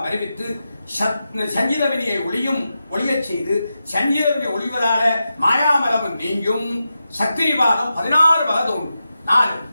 அறிவித்து சஞ்சித வினையை ஒளியச் செய்து சஞ்சித வினை ஒளிவதால மாயாமலமும் நீங்கும். சக்திவாதம் 16 வகை தோன்றும். 4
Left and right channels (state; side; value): inverted; both; correlation -0.90